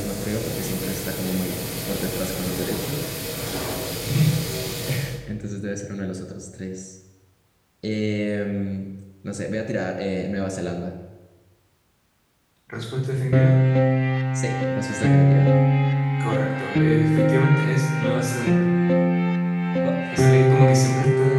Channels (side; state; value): both; identical; correlation 1.00